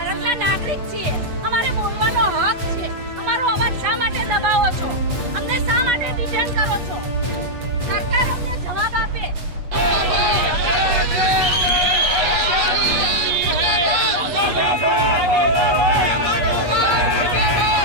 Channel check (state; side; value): late; left; 8.3 ms